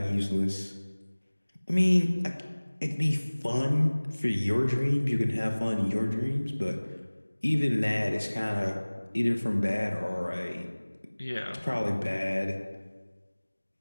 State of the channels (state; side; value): inverted; both; correlation -1.00